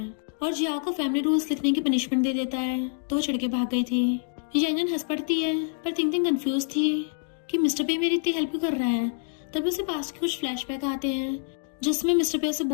और जियाओ को फैमिली रूल्स लिखने की पनिशमेंट दे देता है तो वो चिढ़ के भाग गई थी। यानन हंस पड़ती है पर थिंग थिंग कंफ्यूज थी कि मिस्टर पे मेरी इतनी हेल्प क्यों कर रहा है। तभी उसे पास्ट के कुछ फ्लैशबैक आते हैं जिसमें मिस्टर पे उसे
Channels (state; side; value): silent; right; 59 dB below the other